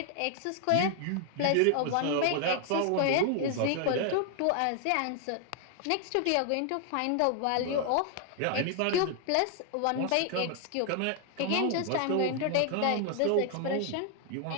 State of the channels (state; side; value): different; both; correlation 0.00